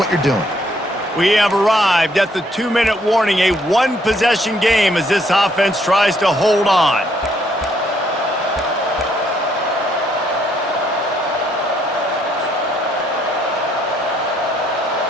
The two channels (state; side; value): normal; both; correlation 0.69